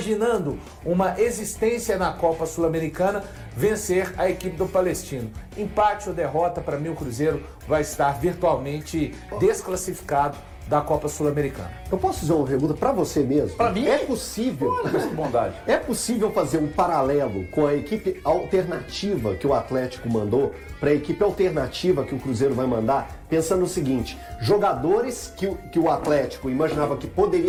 uma existência na Copa Sul-Americana, vencer a equipe do Palestino. Empate ou derrota, para mim o Cruzeiro vai estar virtualmente desclassificado da Copa Sul-Americana. Eu posso fazer uma pergunta para você mesmo? Para mim? É possível? Olha, bondade. É possível fazer um paralelo com a equipe alternativa que o Atlético mandou para a equipe alternativa que o Cruzeiro vai mandar, pensando no seguinte: jogadores que o Atlético imaginava que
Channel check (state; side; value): identical; both; correlation 1.00